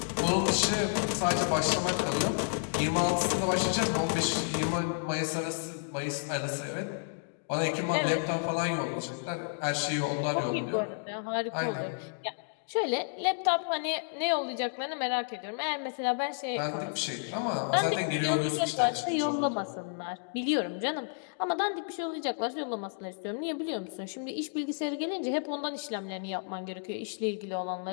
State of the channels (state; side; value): silent; right; digital silence